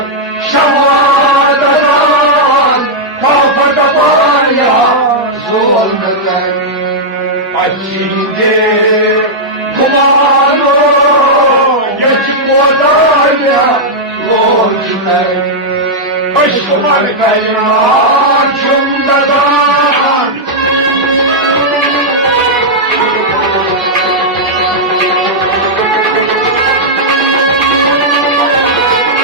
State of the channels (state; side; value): normal; both; correlation -0.07